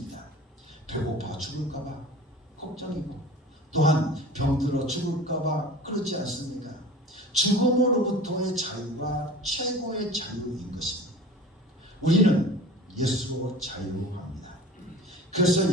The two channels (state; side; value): normal; both; correlation 0.40